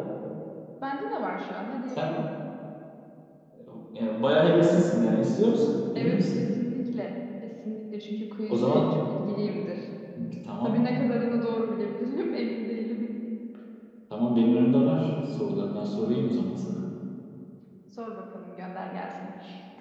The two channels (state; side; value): identical; both; correlation 1.00